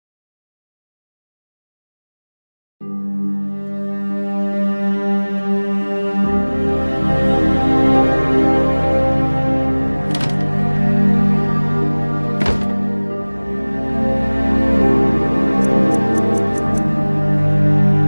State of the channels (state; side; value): inverted; both; correlation -1.00